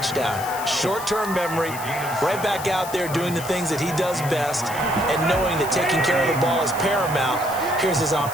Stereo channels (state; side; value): noise; left; hiss, 12 dB below the sound